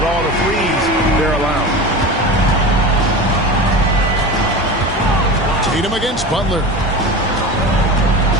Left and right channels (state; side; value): normal; both; correlation 0.29